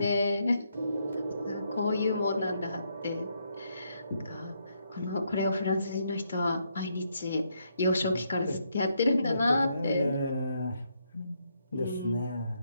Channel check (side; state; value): both; inverted; correlation -0.76